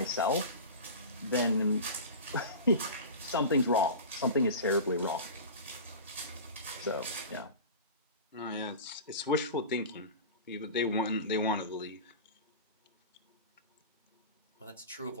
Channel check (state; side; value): inverted; both; correlation -0.31